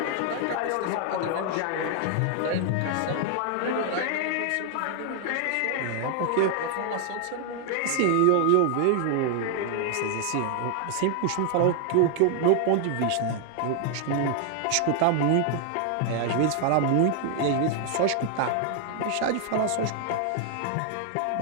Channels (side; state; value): both; different; correlation 0.00